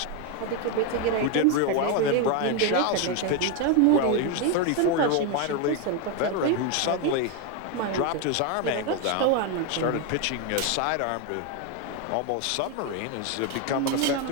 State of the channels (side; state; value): both; different; correlation 0.01